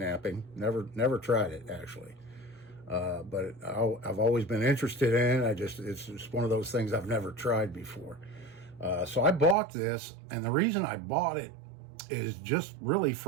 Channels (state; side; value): drops out; left; at 9.6 s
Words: Never tried it actually. But I've always been interested in it. It's just one of those things I've never tried before. So I bought this, and the reason I bought it is just really